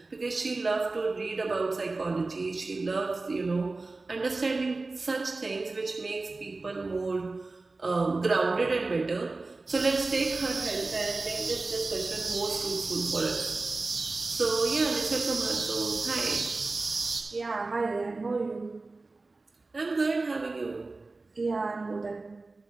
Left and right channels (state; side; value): quieter; left; 3.5 dB